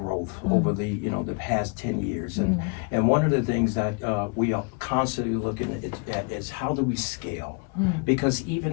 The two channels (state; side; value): quieter; right; 34.3 dB